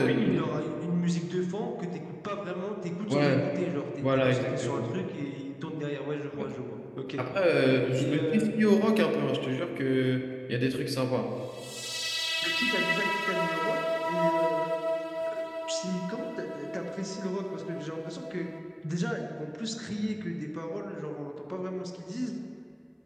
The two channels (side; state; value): both; identical; correlation 1.00